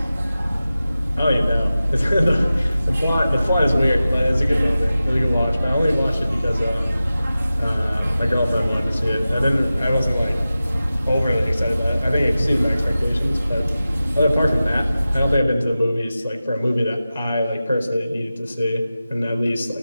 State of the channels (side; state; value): both; inverted; correlation -0.94